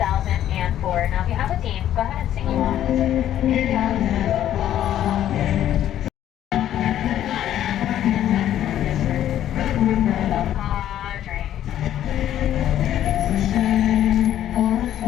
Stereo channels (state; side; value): quieter; right; 11.6 dB